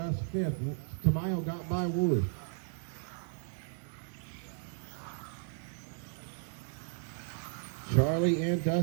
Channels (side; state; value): left; silent; digital silence